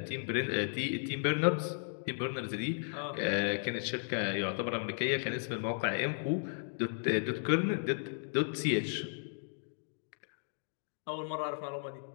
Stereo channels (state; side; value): silent; right; digital silence